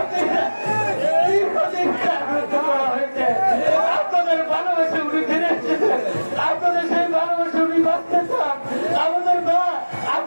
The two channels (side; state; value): both; inverted; correlation -1.00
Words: করা হয়েছে। আপনাদের ভালোবাসে উনি ফিরে এসেছেন, আপনাদের সেই ভালোবাসে উনি বাঁচতে চান। আমাদের মা